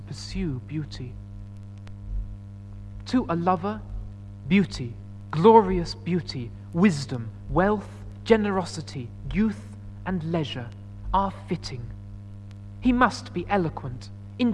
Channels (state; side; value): identical; both; correlation 1.00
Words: pursue beauty. To a lover, beauty, glorious beauty, wisdom, wealth, generosity, youth, and leisure are fitting. He must be eloquent,